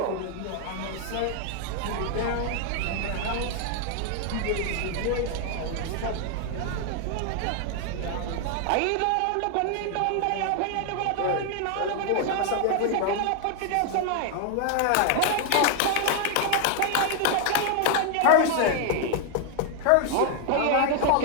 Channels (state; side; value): different; both; correlation 0.00